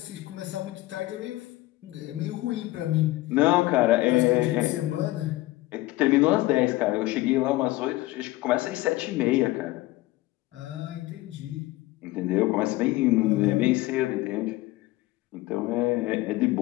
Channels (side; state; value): right; quieter; 18.2 dB